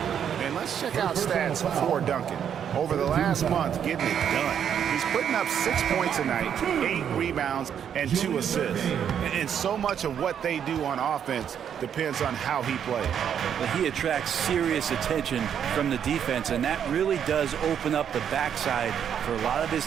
And let's Let's check out stats for Duncan. Over the last month, getting it done. He's putting up 6 points a night, 8 rebounds, and 2 assists. And so much of what they do on offense depends on how he plays. Well, he attracts serious attention from the defense, and that really does open up the backside for a lot of his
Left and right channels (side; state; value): left; quieter; 8.6 dB